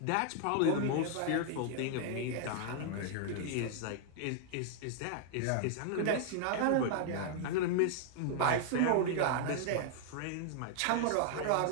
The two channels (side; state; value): both; different; correlation 0.00